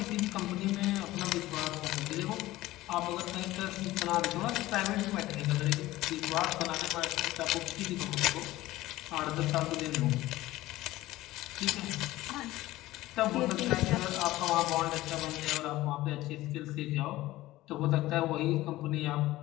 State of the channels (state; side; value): quieter; right; 17.0 dB